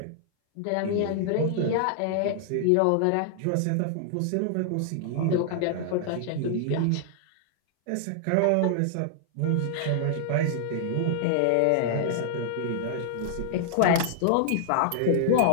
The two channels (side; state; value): both; different; correlation -0.01